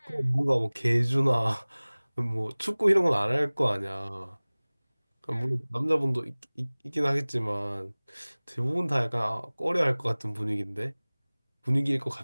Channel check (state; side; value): inverted; both; correlation -1.00